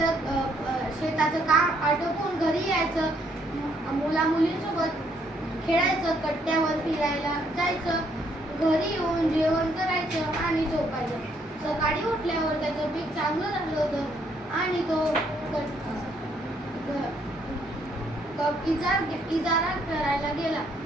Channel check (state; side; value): normal; both; correlation 0.70